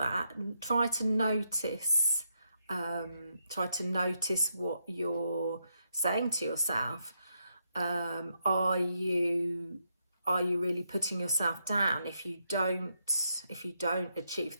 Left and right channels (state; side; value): inverted; both; correlation -0.80